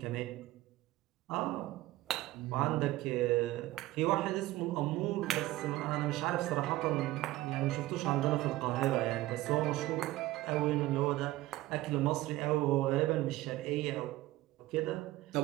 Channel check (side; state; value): left; quieter; 17.1 dB